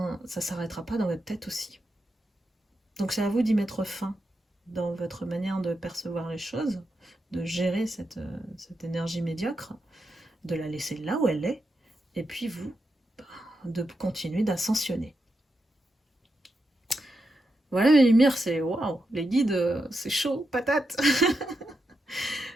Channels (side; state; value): both; normal; correlation 0.86